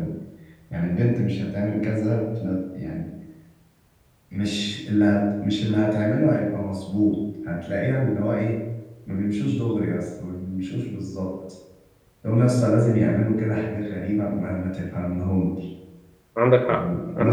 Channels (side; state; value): both; identical; correlation 1.00